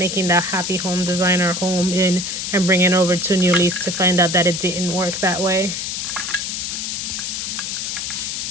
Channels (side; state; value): left; noise; hiss, 3 dB below the sound